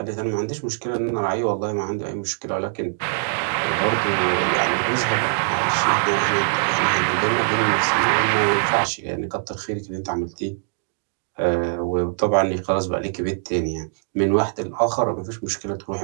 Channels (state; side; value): silent; left; digital silence